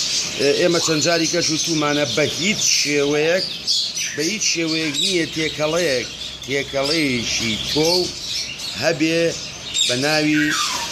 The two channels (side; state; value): both; identical; correlation 1.00